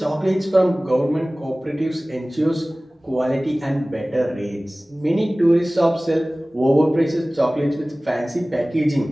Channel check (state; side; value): normal; both; correlation 0.98